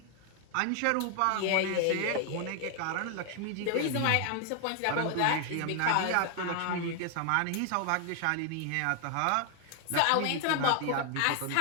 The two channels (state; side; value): different; both; correlation 0.00